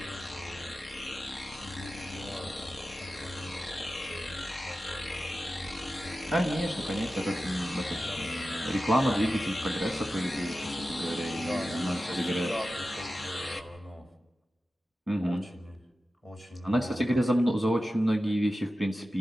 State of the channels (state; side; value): normal; both; correlation 0.94